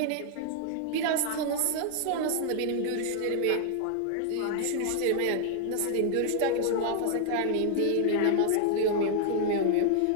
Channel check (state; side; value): different; both; correlation 0.00